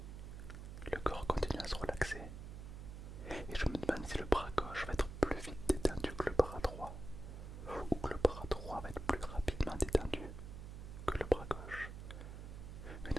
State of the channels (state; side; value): noise; right; hum, 9 dB below the sound